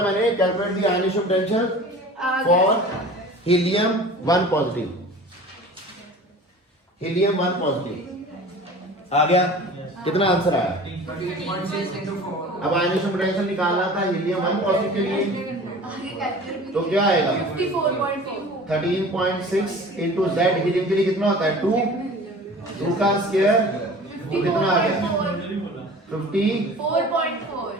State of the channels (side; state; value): both; normal; correlation 0.41